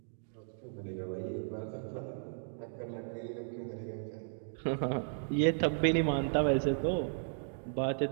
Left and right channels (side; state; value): left; silent; digital silence